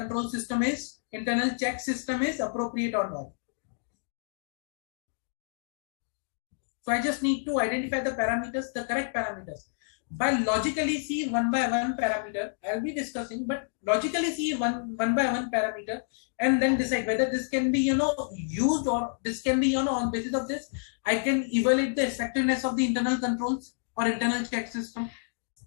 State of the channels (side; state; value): right; silent; digital silence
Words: check system is appropriate or not? So I just need to identify the parameters, the correct parameters. By logically see one by one parameter, I'll be discussing, but logically see one by one parameter and then decide whether this can be, used, or this can be, on basis of this, I can evaluate the effectiveness of the internal controls or internal check system.